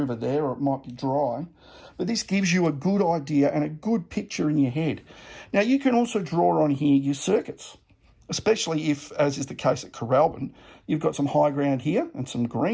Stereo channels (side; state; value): both; identical; correlation 1.00